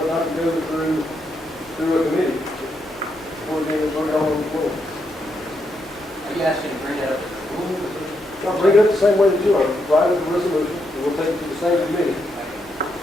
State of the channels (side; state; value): both; normal; correlation 0.80